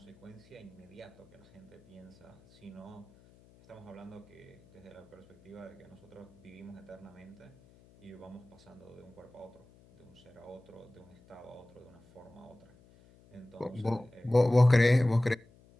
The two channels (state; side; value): noise; left; hum, 26 dB below the sound